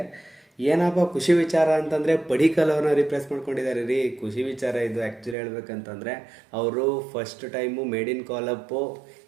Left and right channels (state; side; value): drops out; left; at 5.4 s